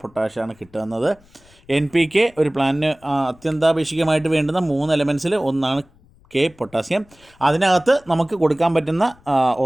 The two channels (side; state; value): left; noise; rumble, 29 dB below the sound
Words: പൊട്ടാഷാണ് കിട്ടുന്നത്. NPK ഒരു പ്ലാന്റിന് അത്യന്താപേക്ഷികമായിട്ട് വേണ്ടുന്ന 3 എലമെൻസിൽ ഒന്നാണ് പൊട്ടാസ്യം. അതിനകത്ത് നമുക്ക് കൊടുക്കാൻ പറ്റുന്ന